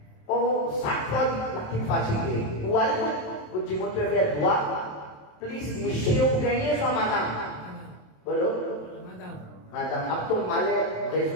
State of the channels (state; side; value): late; right; 27 ms